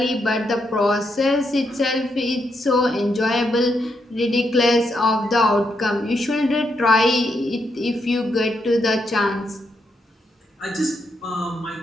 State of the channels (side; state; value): both; normal; correlation 0.80